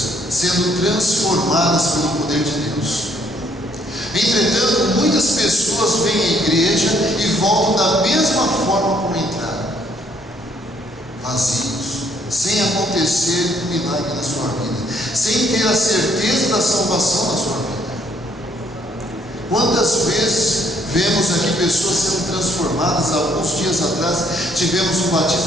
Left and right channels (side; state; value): both; normal; correlation 0.67